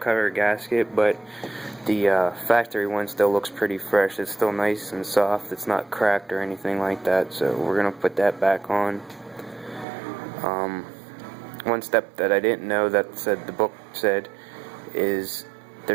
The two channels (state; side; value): drops out; left; at 9.9 s